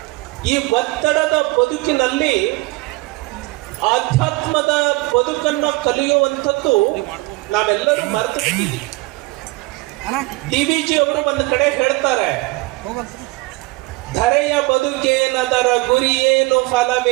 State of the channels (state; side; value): quieter; left; 22.7 dB